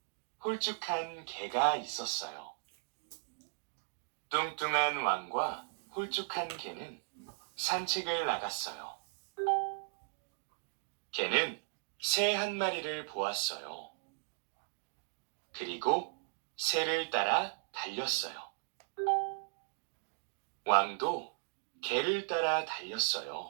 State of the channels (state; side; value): silent; left; digital silence